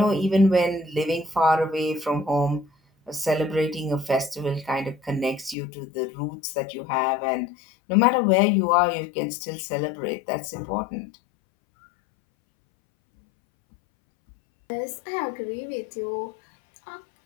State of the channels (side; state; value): right; drops out; at 5.6 s